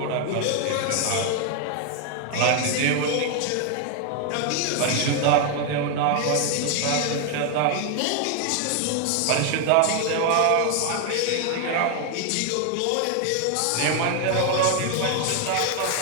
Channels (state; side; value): different; both; correlation 0.01